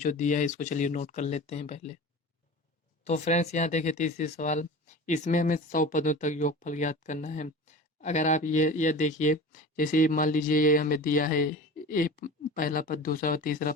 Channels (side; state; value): both; normal; correlation 0.35